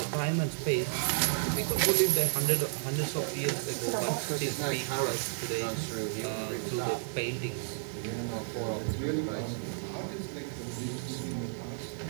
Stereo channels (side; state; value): left; silent; digital silence